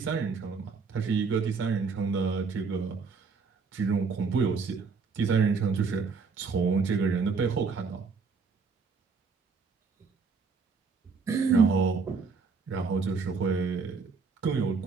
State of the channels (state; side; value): quieter; left; 4.9 dB